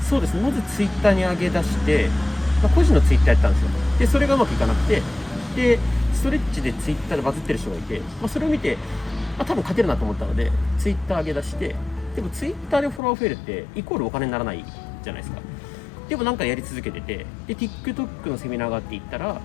そうですね。まず Twitter に上げ出して、個人の Twitter やったんですよ。でそれがうまくいかなくて、でストレッチで Twitter でバズってる人がいて、それを見て多分勝てるなと思ったので Twitter 上げ出して、でも Twitter でフォロワー増えるってイコールお金にならないじゃないですか。でもなんかやり続けてて、で TikTok のセミナーがあって行ったら、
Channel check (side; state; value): right; drops out; at 13.0 s